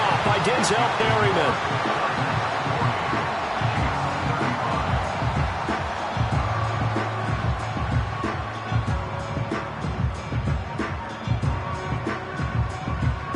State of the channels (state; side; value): identical; both; correlation 1.00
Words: by Denzel Perryman.